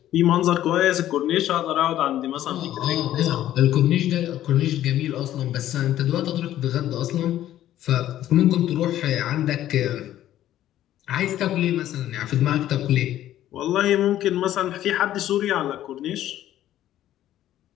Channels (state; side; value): quieter; right; 12.7 dB